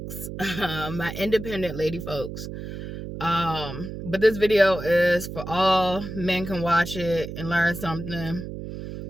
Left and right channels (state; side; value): noise; right; hum, 8 dB below the sound